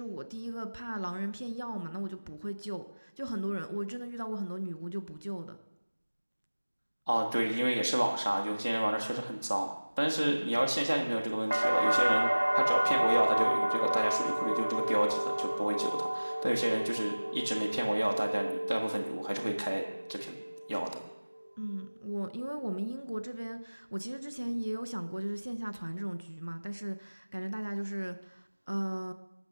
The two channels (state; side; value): inverted; both; correlation -1.00